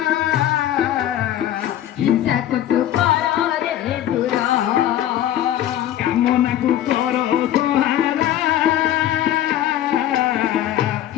ହିଂସାକୁ ତୁ କର ରେ ଦୂର କାମନାକୁ କର ସହାରା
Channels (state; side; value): quieter; right; 12.1 dB